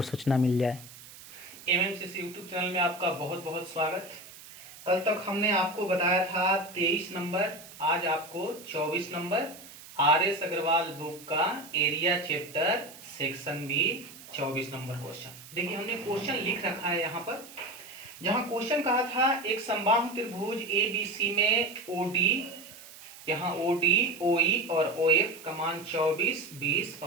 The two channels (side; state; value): right; noise; hiss, 18 dB below the sound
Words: सूचना मिल जाए। एमएमसीसी यूट्यूब चैनल में आपका बहुत बहुत स्वागत। कल तक हमने आपको बताया था 23 नंबर, आज आपको 24 नंबर आर.एस. अग्रवाल बुक का area chapter section B 24 number question. देखिए हमने क्वेश्चन लिख रखा है यहाँ पर, जहाँ क्वेश्चन कहा था एक समबाहु त्रिभुज ABC में OD, यहाँ OD, OE और OF का मान 24, 20